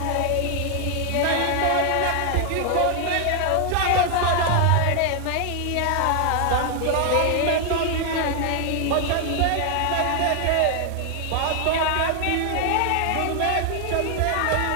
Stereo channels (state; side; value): different; both; correlation 0.00